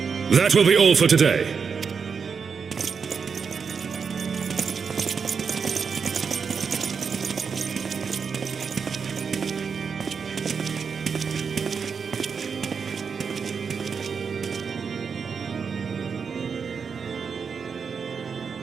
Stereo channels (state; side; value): quieter; left; 5.9 dB